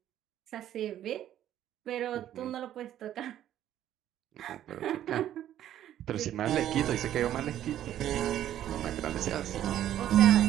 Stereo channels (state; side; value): quieter; left; 11.7 dB